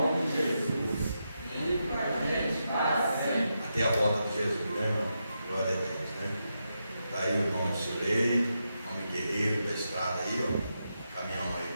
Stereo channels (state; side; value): inverted; both; correlation -0.86